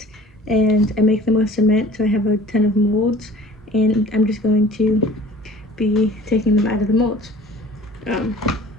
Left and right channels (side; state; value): both; normal; correlation 0.47